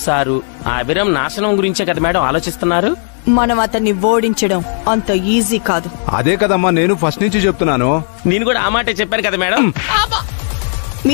సారు ఆ అభిరామ్ నాశనం గురించే కదా మేడం ఆలోచిస్తున్నారు. మనం అతన్ని ఓడించడం అంత ఈజీ కాదు. అదే కదమ్మా నేను ఫస్ట్ నుంచి చెప్తున్నాను. నేను కూడా ఆ మాటే చెప్పాను కదా మేడం.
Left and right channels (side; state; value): right; silent; digital silence